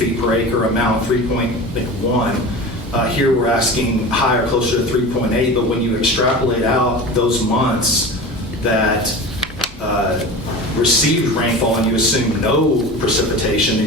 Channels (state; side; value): normal; both; correlation 0.32